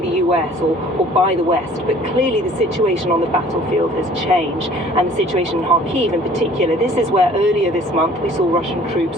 US or by the West. But clearly the situation on the battlefield has changed, and the situation in Kharkiv in particular. This is where earlier this month we saw Russian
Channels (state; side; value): normal; both; correlation 0.52